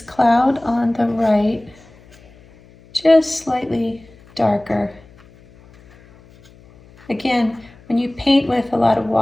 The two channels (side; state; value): left; noise; hum, 26 dB below the sound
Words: cloud on the right just slightly darker. Again, when you paint with a lot of